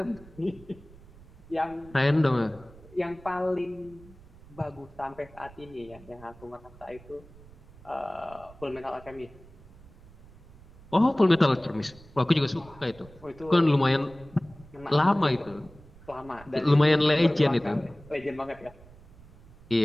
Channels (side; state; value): right; noise; rumble, 22 dB below the sound